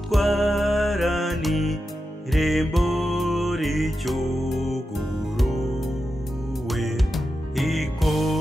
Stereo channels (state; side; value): normal; both; correlation 0.90